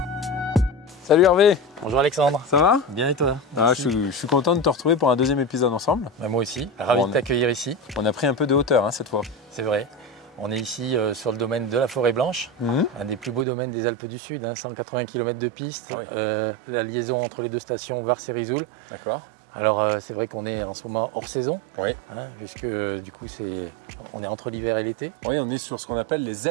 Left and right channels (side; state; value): left; drops out; at 13.5 s